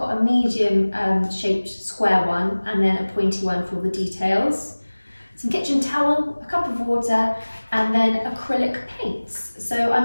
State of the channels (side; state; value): both; inverted; correlation -1.00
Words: a medium shaped square one and then a pointy one for all the details, some kitchen towel, a cup of water, and then acrylic paints. So